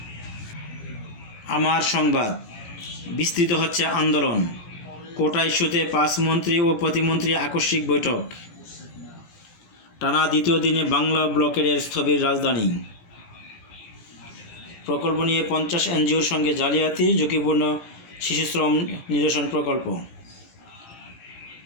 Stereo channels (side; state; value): right; late; 18 ms